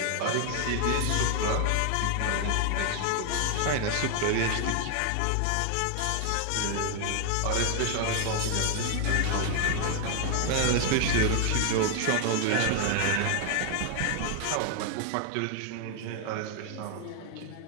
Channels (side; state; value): both; different; correlation 0.00